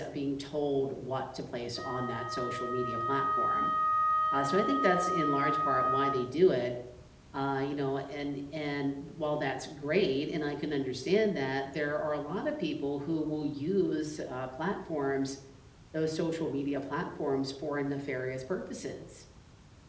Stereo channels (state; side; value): identical; both; correlation 1.00